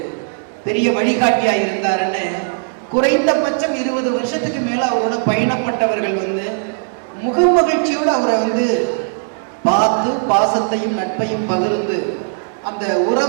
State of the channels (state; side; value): silent; left; digital silence